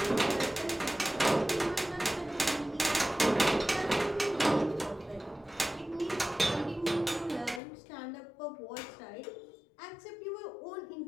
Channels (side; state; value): right; drops out; at 7.6 s